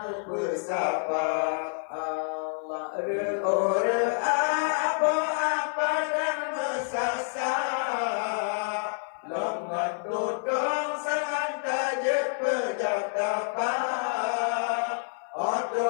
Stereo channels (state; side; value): silent; right; 59 dB below the other